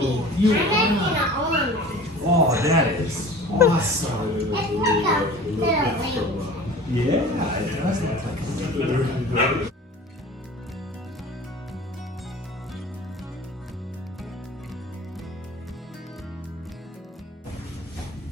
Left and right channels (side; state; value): both; normal; correlation 0.41